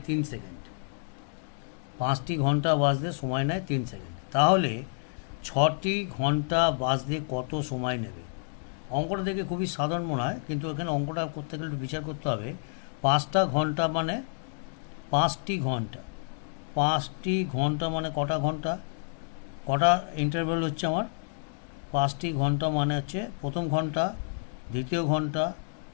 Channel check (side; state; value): right; silent; digital silence